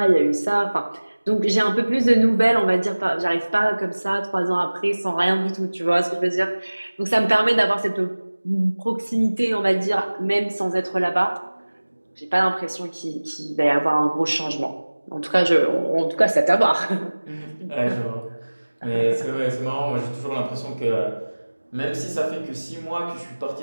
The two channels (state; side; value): inverted; both; correlation -1.00